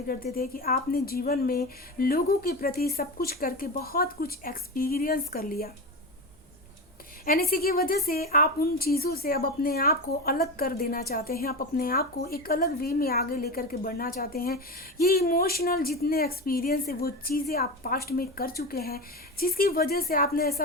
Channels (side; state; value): both; normal; correlation 0.22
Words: करते थे कि आपने जीवन में लोगों के प्रति सब कुछ करके बहुत कुछ एक्सपीरियंस कर लिया एंड इसी की वजह से आप उन चीज़ों से अब अपने आप को अलग कर देना चाहते हैं, आप अपने आप को एक अलग वे में आगे लेकर के बढ़ना चाहते हैं। ये इमोशनल जितने एक्सपीरियंस है वो चीज़ें आप पास्ट में कर चुके हैं, जिसकी वजह से आपने